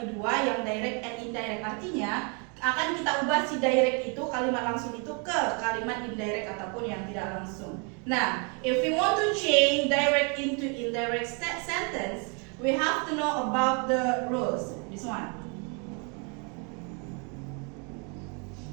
dua, yang direct and indirect. Artinya akan kita ubah si direct itu, kalimat langsung itu, ke kalimat indirect ataupun yang tidak langsung. Nah, if we want to change direct into indirect sentence, we have to know about the rules. This one.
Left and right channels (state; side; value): quieter; left; 35.8 dB